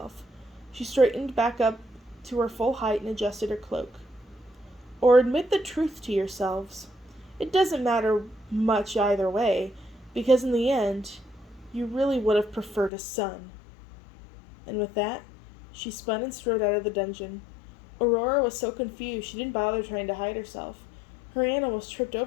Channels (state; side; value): drops out; right; at 12.9 s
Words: She straightened back up to her full height and adjusted her cloak. Or admit the truth to yourselves. It doesn't matter much either way, because in the end, you really would have preferred a son. And with that, she spun and strode out of the dungeon. Aurora was so confused she didn't bother trying to hide herself. Her aunt almost tripped